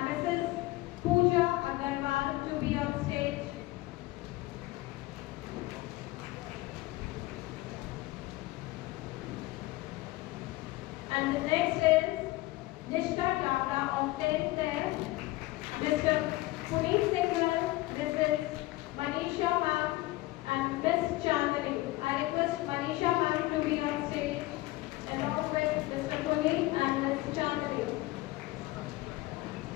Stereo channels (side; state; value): right; quieter; 19.3 dB